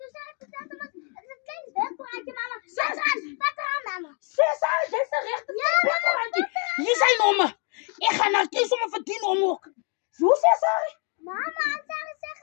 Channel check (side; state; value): right; quieter; 38.8 dB